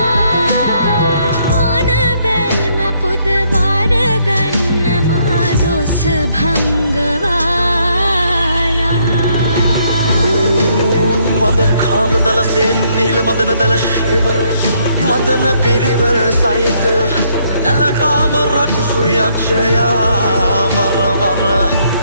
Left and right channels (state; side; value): inverted; both; correlation -0.70